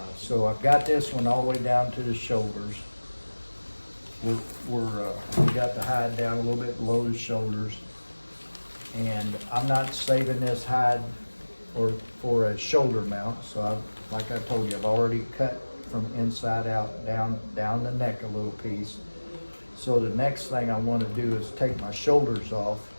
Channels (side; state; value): both; inverted; correlation -1.00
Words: So I've got this one all the way down to the shoulders. We got the hide down a little bit below the shoulders, and I'm not saving this hide for a shoulder mount. So like I told you, I've already cut from inside out down the neck a little piece. So the next thing I want to do is take my shoulders off,